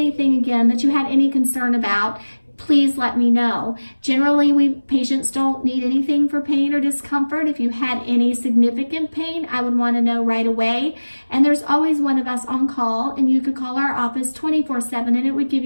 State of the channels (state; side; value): inverted; both; correlation -1.00